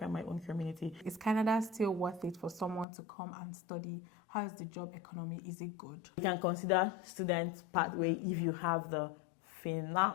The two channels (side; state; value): right; drops out; at 2.9 s